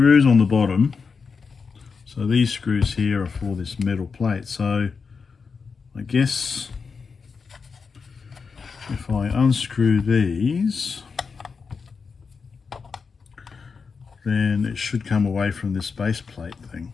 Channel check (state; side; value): quieter; right; 5.2 dB